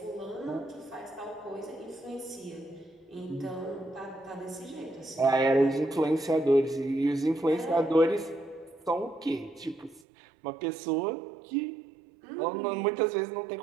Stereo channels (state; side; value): drops out; left; at 10.1 s